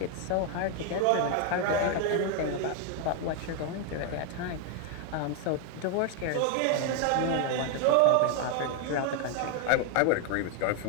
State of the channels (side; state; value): both; different; correlation 0.01